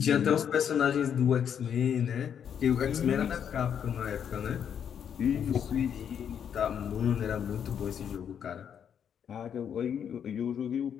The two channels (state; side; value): quieter; right; 8.3 dB